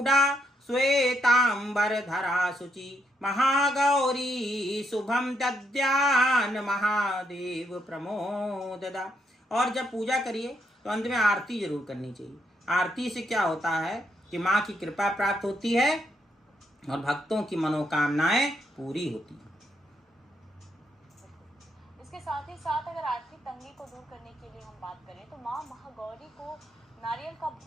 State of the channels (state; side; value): normal; both; correlation 0.77